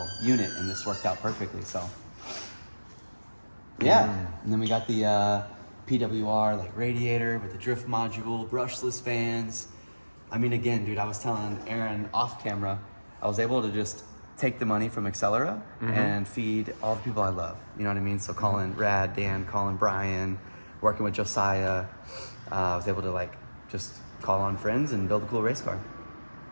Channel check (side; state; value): both; inverted; correlation -1.00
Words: unit and this worked out perfectly, so. Yeah. And then we got the PWR like radiator with the drift module, brushless fans. I mean, again, dude, I was telling Aaron off camera, I was able to just take the money from Accelera and feed all the people I love. You know what I mean? So calling Rad, Dan, calling Brian, working with Josiah. I was able to like just call on friends and build a cool race car.